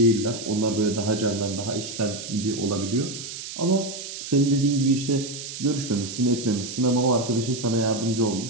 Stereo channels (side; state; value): right; noise; hiss, 9 dB below the sound